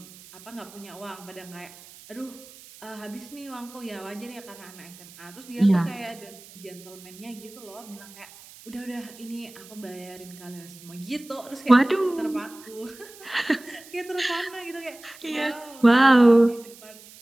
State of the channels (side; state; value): right; noise; hiss, 20 dB below the sound